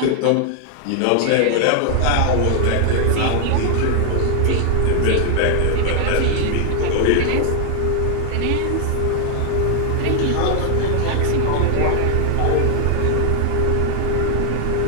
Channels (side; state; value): both; different; correlation 0.00